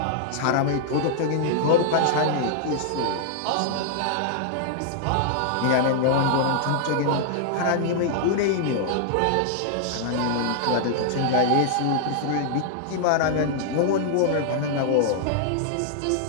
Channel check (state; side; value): different; both; correlation -0.01